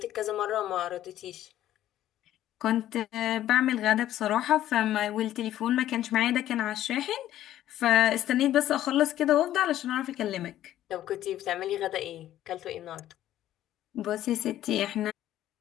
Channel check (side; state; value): right; quieter; 12.8 dB